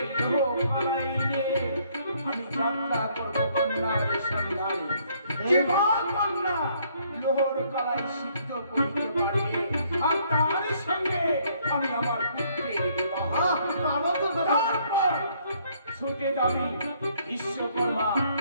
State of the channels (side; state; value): both; inverted; correlation -0.66